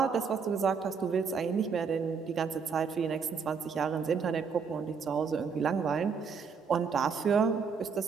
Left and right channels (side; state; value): left; quieter; 5.8 dB